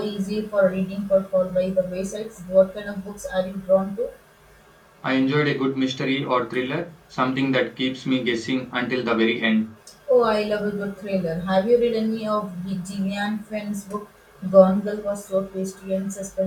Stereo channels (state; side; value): identical; both; correlation 1.00